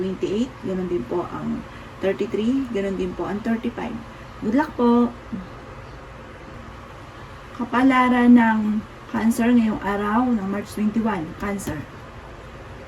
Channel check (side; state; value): both; identical; correlation 1.00